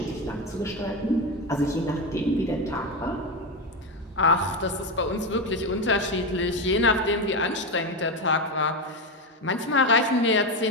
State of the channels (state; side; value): normal; both; correlation 0.14